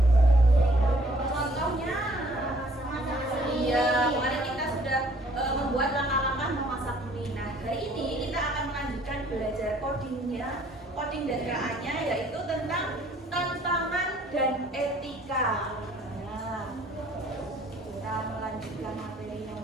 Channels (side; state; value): both; normal; correlation 0.59